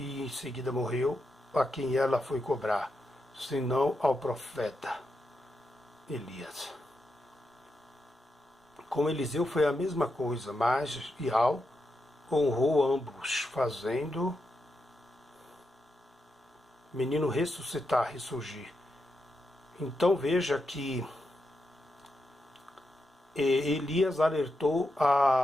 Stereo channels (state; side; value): normal; both; correlation 0.85